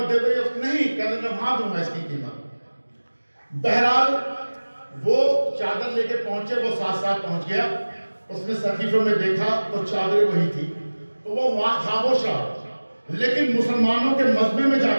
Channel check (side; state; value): both; inverted; correlation -1.00